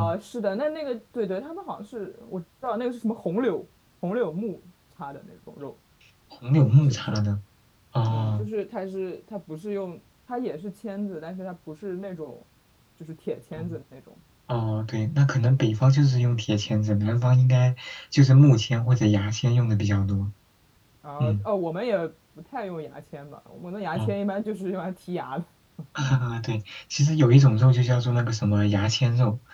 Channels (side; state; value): both; identical; correlation 1.00